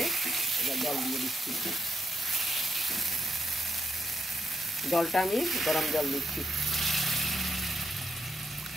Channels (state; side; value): normal; both; correlation 0.80